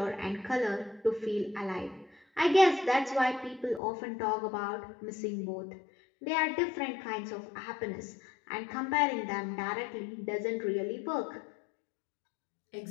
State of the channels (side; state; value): right; drops out; at 3.8 s